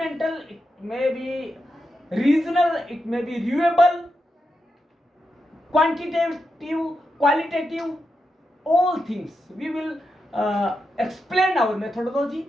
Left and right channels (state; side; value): normal; both; correlation 0.86